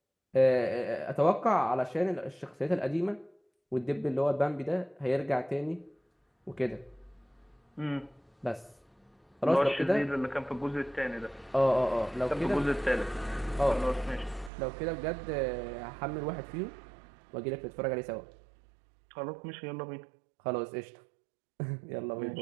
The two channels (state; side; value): drops out; left; at 14.5 s